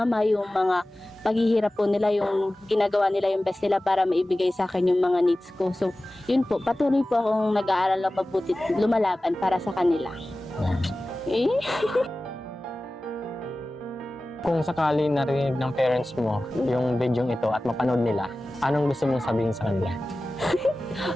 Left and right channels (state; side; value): normal; both; correlation 0.96